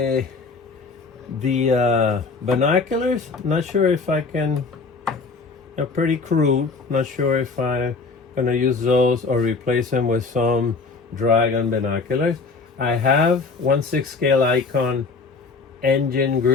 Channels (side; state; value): right; quieter; 4.3 dB